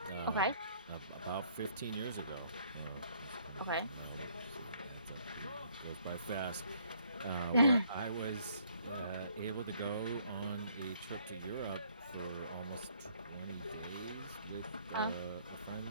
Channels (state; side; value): inverted; both; correlation -0.64